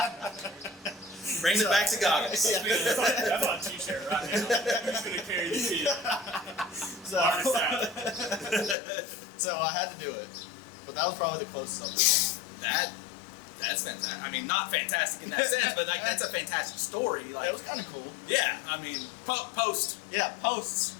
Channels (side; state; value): right; drops out; at 8.8 s